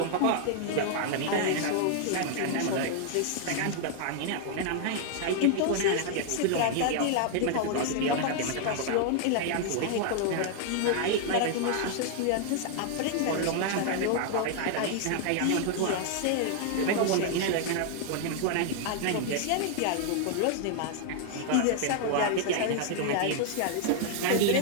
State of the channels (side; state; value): both; different; correlation 0.00